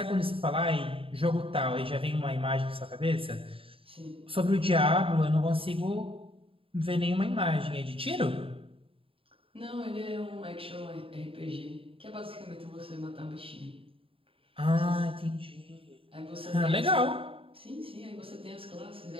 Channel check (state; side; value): late; left; 0.27 ms